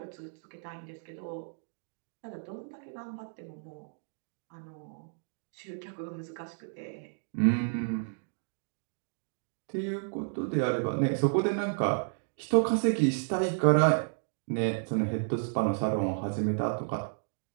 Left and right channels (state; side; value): silent; left; digital silence